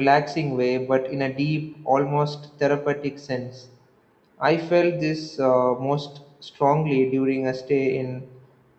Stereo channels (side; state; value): both; identical; correlation 1.00